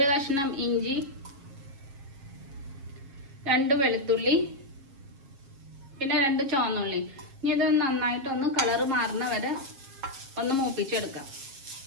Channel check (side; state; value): left; late; 7.4 ms